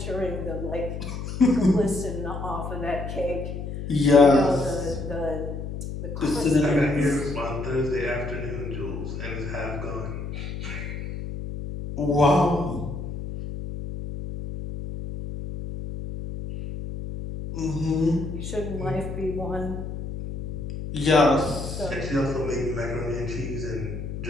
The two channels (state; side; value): noise; left; hum, 6 dB below the sound